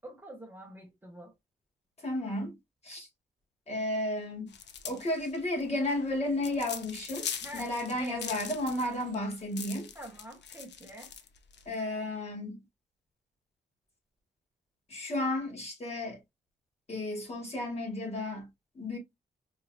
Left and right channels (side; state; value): both; normal; correlation 0.35